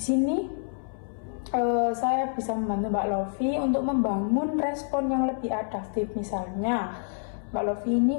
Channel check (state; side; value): silent; right; 60 dB below the other